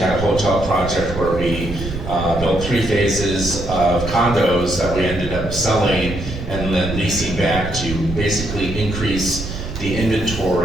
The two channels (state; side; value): noise; right; rumble, 8 dB below the sound